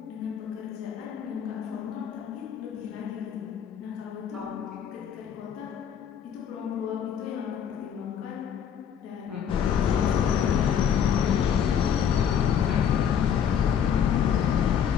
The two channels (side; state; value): right; quieter; 8.3 dB